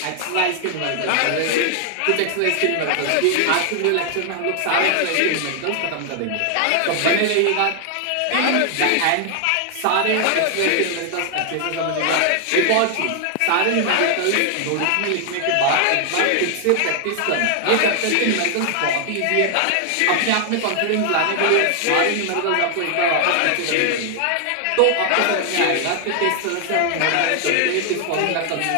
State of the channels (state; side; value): different; both; correlation 0.00